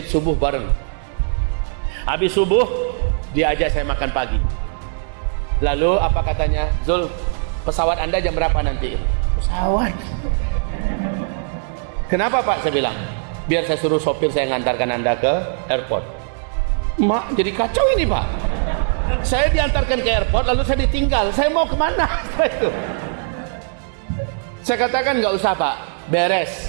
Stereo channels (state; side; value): silent; left; digital silence